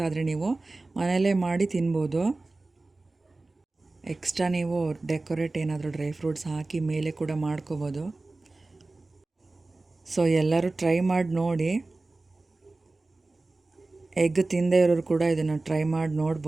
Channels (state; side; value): quieter; left; 3.2 dB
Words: ಆದರೆ ನೀವು ಮನೆಯಲ್ಲೇ ಮಾಡಿ ತಿನ್ಬೋದು. ಎಕ್ಸ್ಟ್ರಾ ನೀವು ಡೆಕೋರೇಟ್ ಏನಾದರೂ ಡ್ರೈ ಫ್ರೂಟ್ಸ್ ಹಾಕಿ ಮೇಲೆ ಕೂಡ ಮಾಡ್ಕೋಬೋದು. ಸೊ ಎಲ್ಲರೂ ಟ್ರೈ ಮಾಡಿ ನೋಡಿ. ಎಗ್ ತಿಂದೇ ಇರೋರು ಕೂಡ ಇದನ್ನು ಟ್ರೈ ಮಾಡಿ